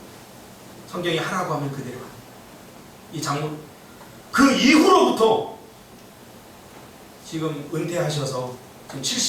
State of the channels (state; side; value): identical; both; correlation 1.00